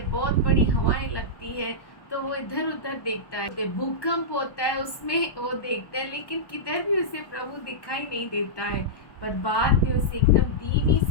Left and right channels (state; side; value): late; right; 1.1 ms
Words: बहुत बड़ी हवाएं लगती है, तो वो इधर उधर देखता है। भूकंप होता है उसमें वो देखता है, लेकिन किधर भी उसे प्रभु दिखाई नहीं देता है। पर बाद में उसे एकदम धीमी